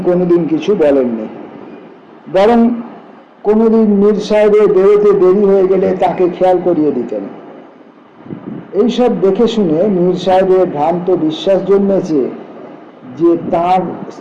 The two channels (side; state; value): both; identical; correlation 1.00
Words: কোনোদিন কিছু বলেননি, বরং কোনোদিন মীর সাহেবের বেরোতে দেরি হয়ে গেলে তাকে খেয়াল করিয়ে দিতেন। এইসব দেখে শুনে মীর সাহেবের ভ্রান্ত বিশ্বাস জন্মেছে যে তাঁর